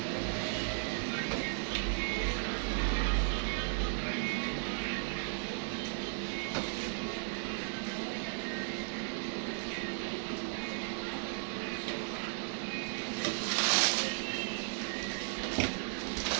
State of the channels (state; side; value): silent; left; 54 dB below the other